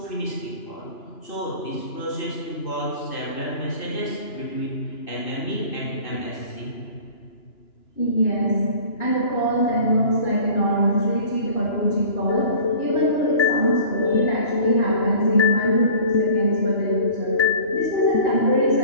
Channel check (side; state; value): right; late; 2.9 ms